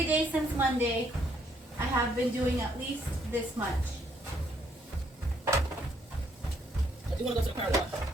day since Monday, I have been doing at least this much. I do want to go to the car wash.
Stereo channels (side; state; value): both; normal; correlation 0.70